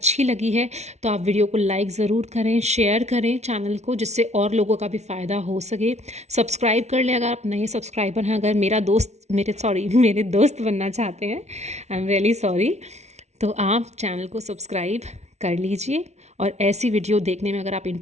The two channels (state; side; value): late; left; 0.32 ms